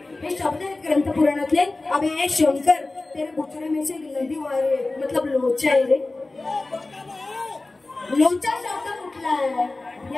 हे शब्द आहेत ग्रंथ पुराणातले. अबे शंकर तेरे बुचड़े में से नदी वारे मतलब लोचा आहे रे. लोचा शब्द कुठला आहे?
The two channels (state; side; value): quieter; right; 3.2 dB